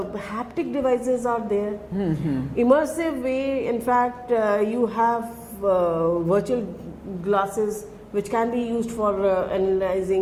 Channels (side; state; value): both; identical; correlation 1.00